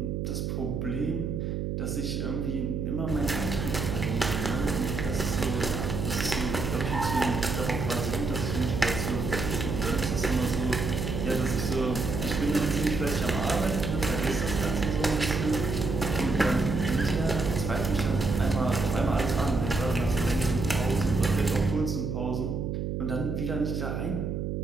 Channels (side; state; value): right; noise; hum, 2 dB below the sound